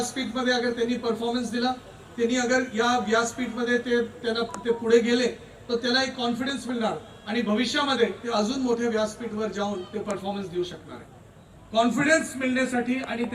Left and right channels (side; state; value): both; identical; correlation 1.00